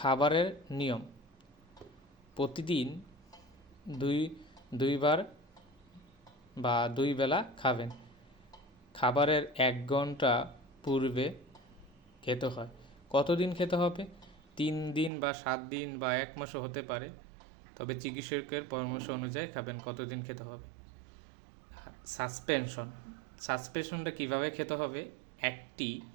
নিয়ম, প্রতিদিন দুইবার বা 2 বেলা খাবেন। খাবারের 1 ঘন্টা পূর্বে খেতে হয়। কতদিন খেতে হবে? 3 দিন বা 7 দিন বা 1 মাসও হতে পারে, তবে চিকিৎসকের পরামর্শ অনুযায়ী খাবেন কতদিন খেতে হবে। সাসপেনশনটা কিভাবে খেতে হবে? একটি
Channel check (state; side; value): drops out; left; at 15.1 s